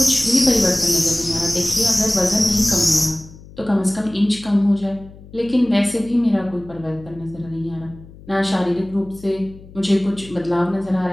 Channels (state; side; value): noise; left; hum, 20 dB below the sound